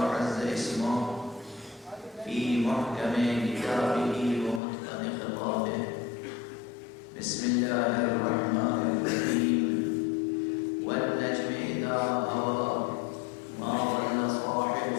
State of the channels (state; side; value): drops out; right; at 4.6 s